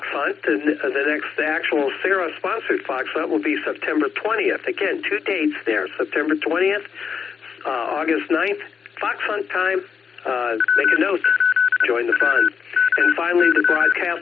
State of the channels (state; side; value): quieter; right; 6.3 dB